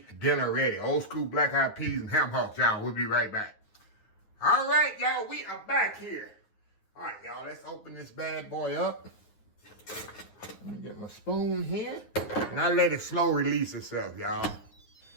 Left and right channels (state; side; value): late; right; 9.6 ms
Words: dinner ready. Old school black-eyed peas and ham hocks, y'all. We'll be right back. All right, y'all, we are back here. All right, y'all, let's open this bad boy up. Let me get my spoon here. And I'll let it slow release itself, y'all.